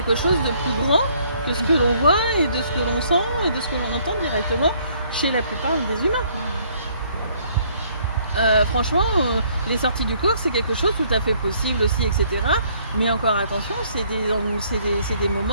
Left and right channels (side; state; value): both; inverted; correlation -0.64